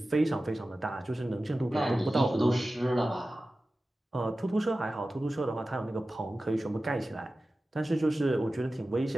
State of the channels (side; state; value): both; normal; correlation 0.95